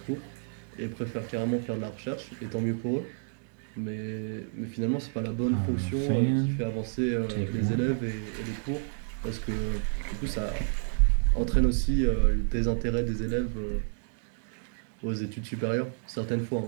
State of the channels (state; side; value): silent; left; digital silence